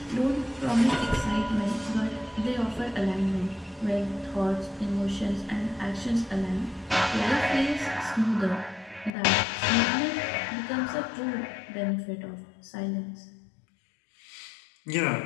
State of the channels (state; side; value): drops out; right; at 9.1 s